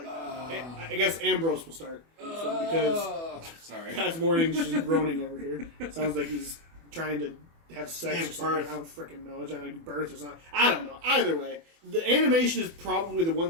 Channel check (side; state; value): left; late; 24 ms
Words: guess Ambrose will start this one because Sorry. PasMorning's just groaning over here. Sounds like he's trying to have sex Give or something. birth. I don't freaking know. Trying to give birth or something. I don't know. Either way, the animation is probably the one